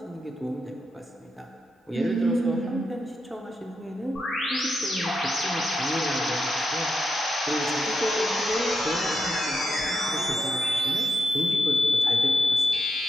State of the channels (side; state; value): both; normal; correlation 0.85